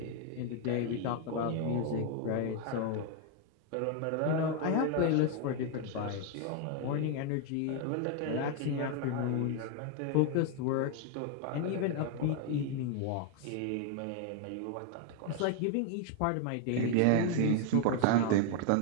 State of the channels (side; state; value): both; different; correlation 0.01